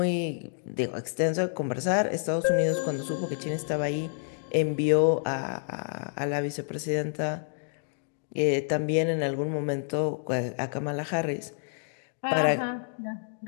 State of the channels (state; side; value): silent; right; digital silence